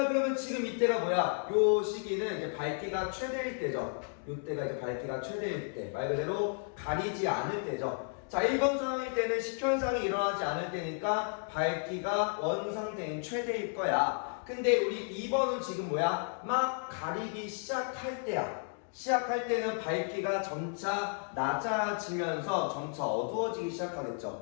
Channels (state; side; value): silent; right; 56 dB below the other